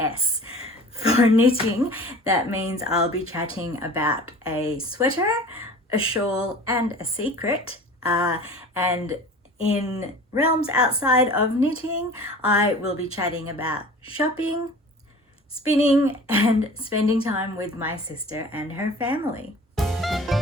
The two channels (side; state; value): both; normal; correlation 0.41